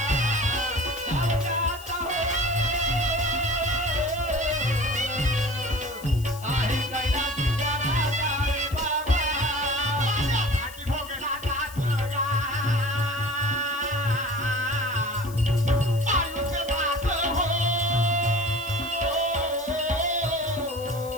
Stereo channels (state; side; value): noise; left; hiss, 17 dB below the sound